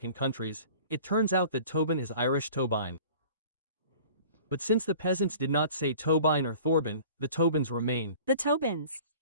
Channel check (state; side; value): inverted; both; correlation -0.45